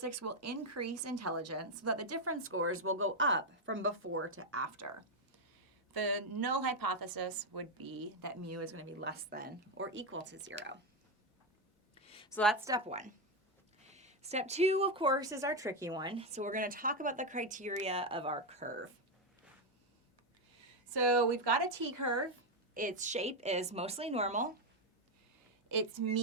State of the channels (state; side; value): normal; both; correlation 0.07